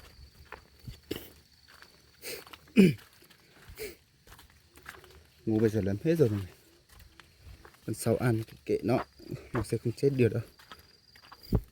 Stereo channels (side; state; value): both; identical; correlation 1.00